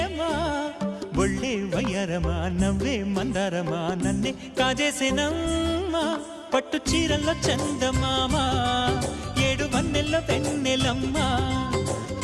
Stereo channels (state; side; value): identical; both; correlation 1.00